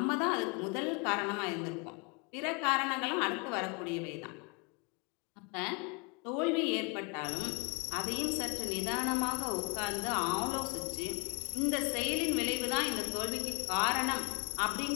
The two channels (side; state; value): right; quieter; 30.4 dB